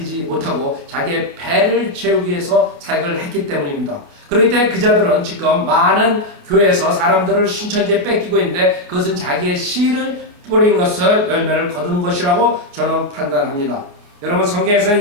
못하고 자기의 배를 채우기 위해서 사역을 했기 때문입니다. 그렇기 때문에 그 자들은 지금 많은 교회에서 사람들을 신천지에 뺏기고 있는데 그것은 자기의 씨를 뿌린 것을 열매를 거둔 것이라고 저는 판단합니다. 여러분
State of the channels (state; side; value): late; left; 29 ms